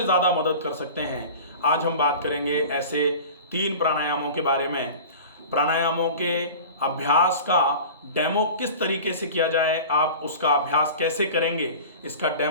ज़्यादा मदद कर सकते हैं। आज हम बात करेंगे ऐसे 3 प्राणायामों के बारे में। प्राणायामों के अभ्यास का डेमो किस तरीके से किया जाए, आप उसका अभ्यास कैसे करेंगे, इसका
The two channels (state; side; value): inverted; both; correlation -0.37